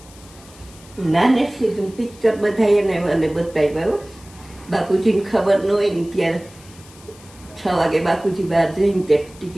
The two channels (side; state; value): left; noise; hiss, 23 dB below the sound